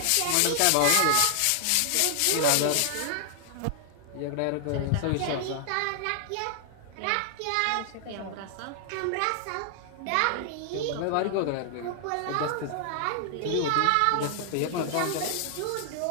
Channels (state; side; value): different; both; correlation 0.00